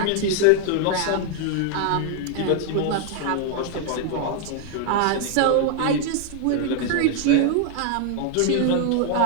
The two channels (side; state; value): both; different; correlation 0.00